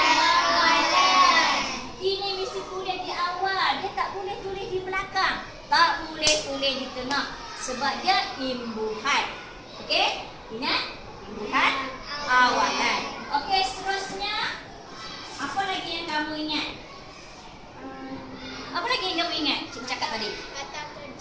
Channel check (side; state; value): both; identical; correlation 1.00